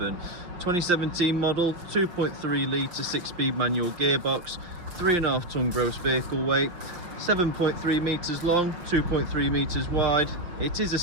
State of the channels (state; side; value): late; left; 5.9 ms